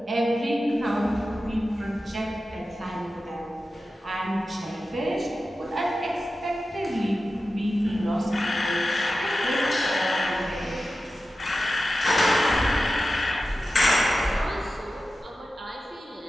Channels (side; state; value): both; normal; correlation 0.93